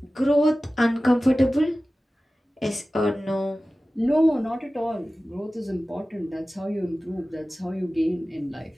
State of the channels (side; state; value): both; normal; correlation 0.96